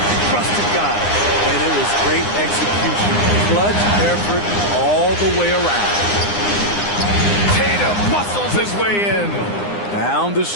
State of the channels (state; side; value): late; right; 9.8 ms